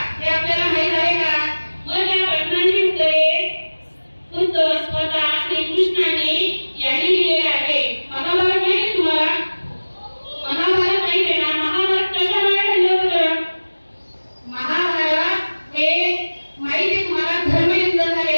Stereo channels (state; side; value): inverted; both; correlation -1.00